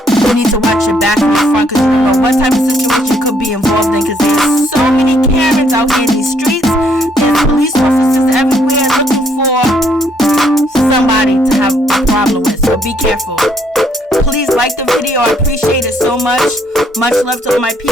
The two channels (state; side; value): normal; both; correlation 0.69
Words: you need to watch your back and your front, because you don't know what type of situation you could be involved in, because there's so many Karens out here in these streets. There's police officers everywhere looking for somebody to have a problem with, so be careful. Please like the video. I appreciate it so much. Much love to all my